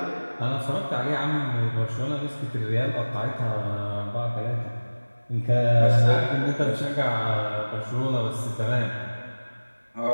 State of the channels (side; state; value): both; inverted; correlation -1.00